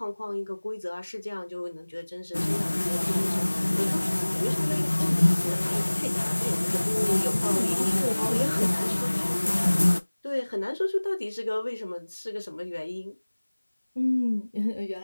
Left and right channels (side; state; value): both; inverted; correlation -1.00